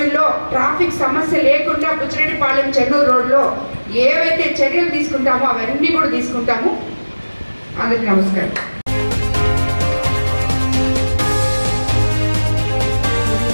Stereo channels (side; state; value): both; inverted; correlation -1.00